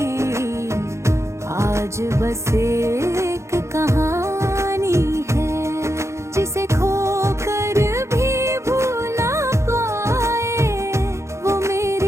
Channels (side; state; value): left; late; 0.14 ms